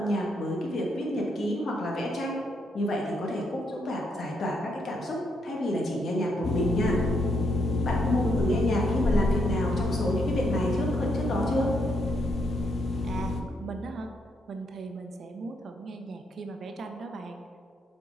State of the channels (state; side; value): normal; both; correlation 0.77